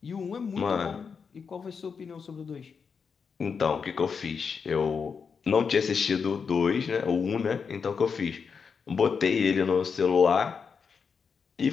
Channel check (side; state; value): right; quieter; 5.9 dB